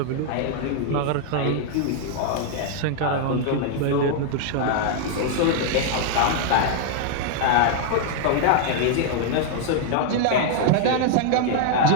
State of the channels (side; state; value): both; different; correlation 0.00